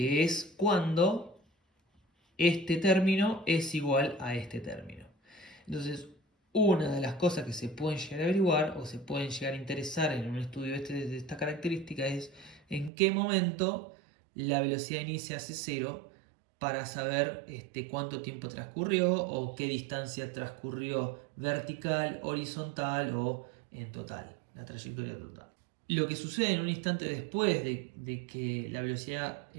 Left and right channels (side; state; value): left; drops out; at 12.9 s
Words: es cuando este término es igual a este término. Entonces, una de las cosas que se pueden llegar a averiguar o se pueden llegar a interesar en un estudio de esta característica es en qué momento la velocidad inicia hace 0 para saber cuánto tiempo transcurrió o qué distancia transcurrió vertical, horizontal o en total, la trayectoria total. Lo que sucede en un instante después de que la velocidad